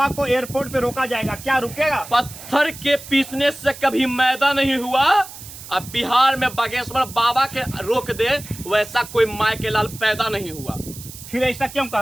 को एयरपोर्ट पे रोका जाएगा, क्या रुकेगा? पत्थर के पीसने से कभी मैदा नहीं हुआ। अब बिहार में बागेश्वर बाबा के रोक दे वैसा कोई माय के लाल पैदा नहीं हुआ। फिर ऐसा क्यों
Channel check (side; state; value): right; noise; hiss, 14 dB below the sound